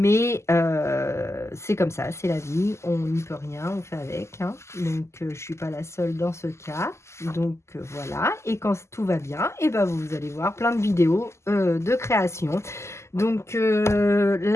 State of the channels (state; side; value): late; right; 0.13 ms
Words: c'est comme ça, c'est la vie, on n'y peut rien, on fait avec, hein. Donc je suis pas la seule dans ce cas. Donc voilà, et quand tout va bien, et ben vous allez voir plein de vidéos de création. Donc